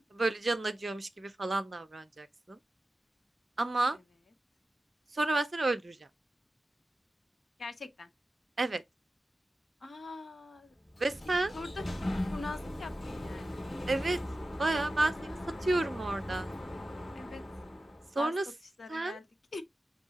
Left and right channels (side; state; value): both; normal; correlation 0.94